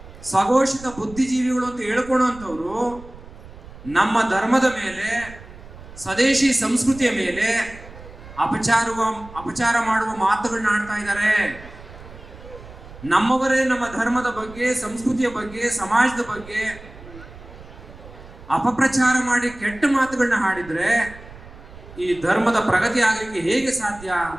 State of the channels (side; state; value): right; noise; rumble, 18 dB below the sound